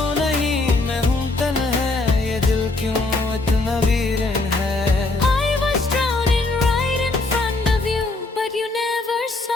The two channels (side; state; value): right; quieter; 3.2 dB